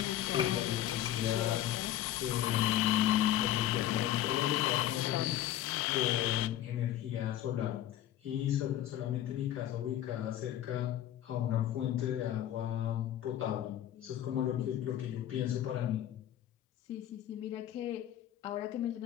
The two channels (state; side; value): quieter; right; 12.3 dB